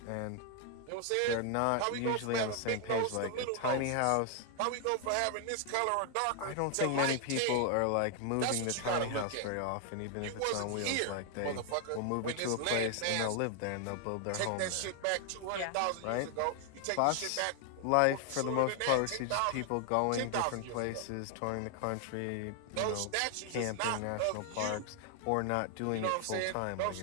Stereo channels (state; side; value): different; both; correlation 0.00